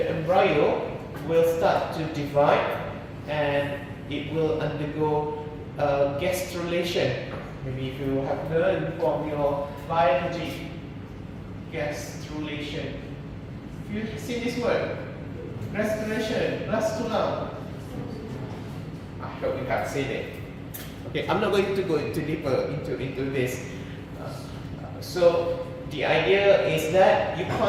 embryo will start to divide and it will undergo gastrulation. Maybe if you have learned from your biology, gastrulation. You see this word? Gastrulation, gastrula. I hope you have seen it. Okay, I'm not going to go into deeper into this. So the idea is that you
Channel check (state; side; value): identical; both; correlation 1.00